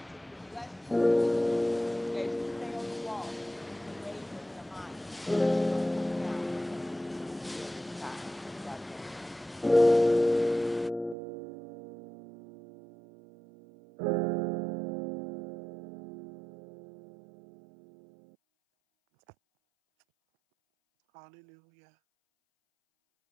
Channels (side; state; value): left; drops out; at 11.2 s